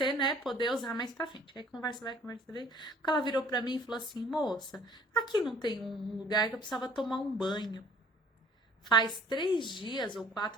né, poder usar mais pra frente. Aí conversa vai. Quando ela virou pra mim e falou assim, moça, aqui não tem um lugar que eu precisava tomar um banho. Faz 3 dias ou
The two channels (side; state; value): both; normal; correlation 0.54